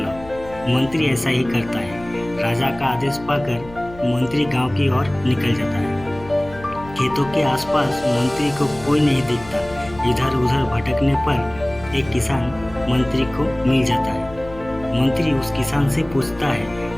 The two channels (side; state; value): left; noise; hum, 18 dB below the sound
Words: मंत्री ऐसा ही करता है। राजा का आदेश पाकर मंत्री गांव की ओर निकल जाता है। खेतों के आसपास मंत्री को कोई नहीं दिखता। इधर उधर भटकने पर एक किसान मंत्री को मिल जाता है। मंत्री उस किसान से पूछता